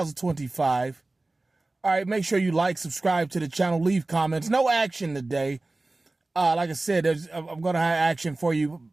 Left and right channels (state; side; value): quieter; left; 3.0 dB